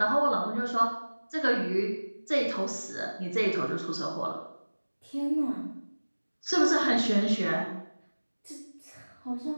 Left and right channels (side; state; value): both; inverted; correlation -1.00